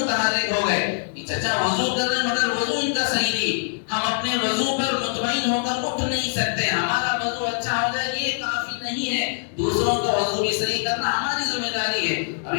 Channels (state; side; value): silent; right; digital silence